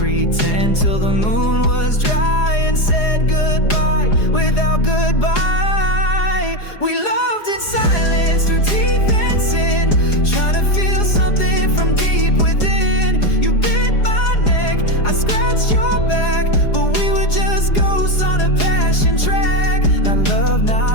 till the moon was dry and said goodbye without goodbye. We loved in silence through teeth and sin, trying to feel something from deep within. You bit my neck, I scratched your back, but we were just ghosts on a passion track. Not love,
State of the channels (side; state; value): right; late; 4.8 ms